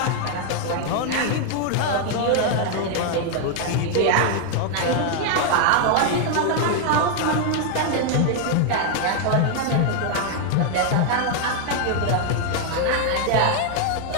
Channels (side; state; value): both; different; correlation 0.00